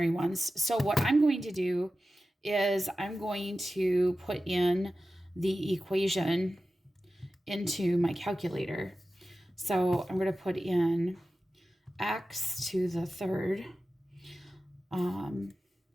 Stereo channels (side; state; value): both; normal; correlation 0.94